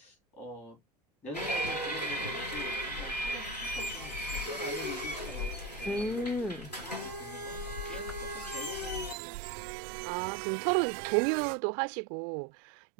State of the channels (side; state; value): left; drops out; at 9.2 s